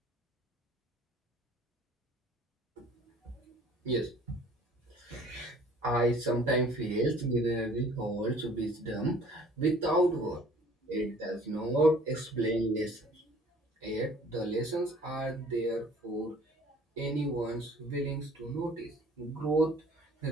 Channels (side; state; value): both; normal; correlation 0.53